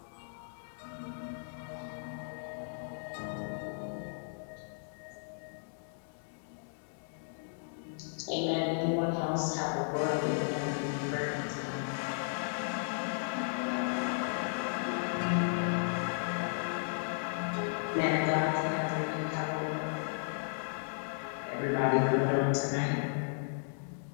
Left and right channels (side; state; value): right; silent; digital silence